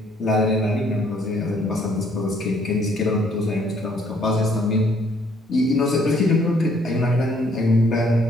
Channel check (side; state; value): both; normal; correlation 0.64